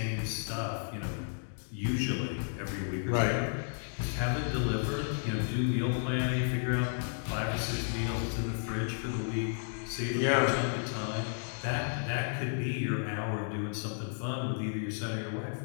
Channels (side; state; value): right; silent; digital silence